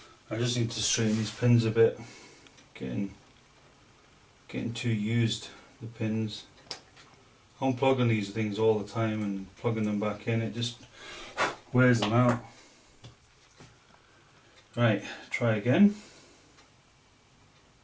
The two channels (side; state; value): both; identical; correlation 1.00